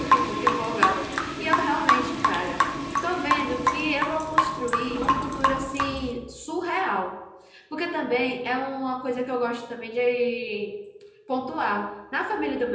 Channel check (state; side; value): identical; both; correlation 1.00